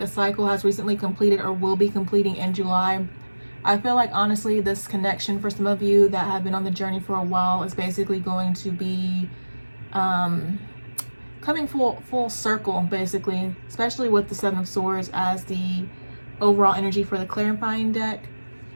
a cycle has recently completed or will be completing in July. I feel like, honestly, this connection for some of you that have been on the journey for a while is basically going to be coming full circle, basically, especially with the Seven of Swords as the overall energy for the clarifying deck.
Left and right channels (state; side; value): inverted; both; correlation -1.00